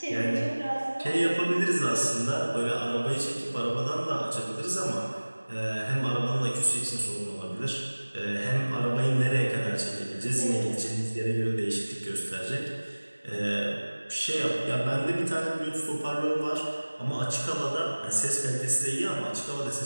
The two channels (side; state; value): both; inverted; correlation -1.00